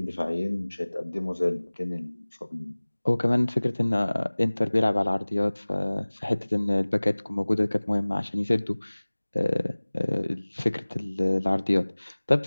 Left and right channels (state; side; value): inverted; both; correlation -1.00